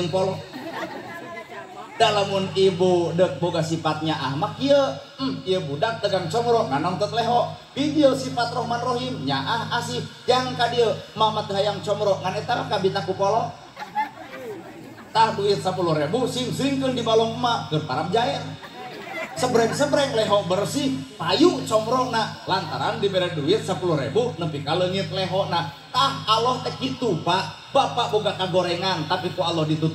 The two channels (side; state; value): both; identical; correlation 1.00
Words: polo. Dalamun ibu dek boga sifatnya ahmak kieu, ieu budak dagang combro nganongtot leho. Video sifat Rahman Rahim nyaah asih jang ka dieu mama teh hayang combro ngan eta kabita ku polo. Tah duit 10.000 sing-singkeun di balong emak keur parab jae. Sebreng-sebreng leho bersih payu combrongna lantaran dibere duit 10.000 nepi ka leungit lehona. Tah Allah teh kitu Pak. Bapak boga kagorengan tapi ku Allah